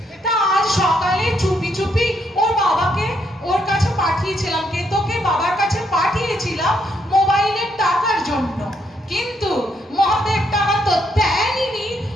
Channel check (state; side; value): normal; both; correlation 0.75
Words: তা আজ সকালে চুপি চুপি ওর বাবাকে ওর কাছে পাঠিয়েছিলাম, কেতোকে বাবার কাছে পাঠিয়েছিলাম মোবাইলের টাকার জন্য। কিন্তু মহাদেব টাকা তো দেয়নি,